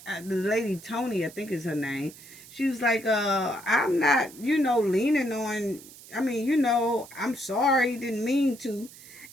lady Tony, I think is her name. She was like, I'm not, leaning on, I'm sorry, didn't mean to.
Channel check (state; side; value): noise; right; hiss, 19 dB below the sound